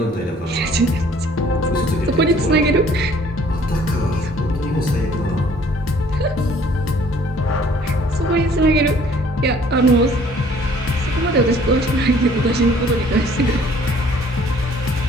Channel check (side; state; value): both; normal; correlation 0.57